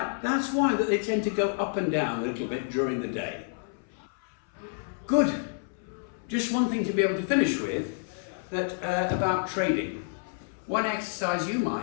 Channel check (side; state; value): right; silent; 59 dB below the other